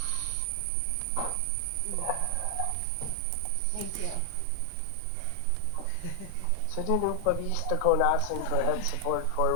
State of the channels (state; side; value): different; both; correlation 0.00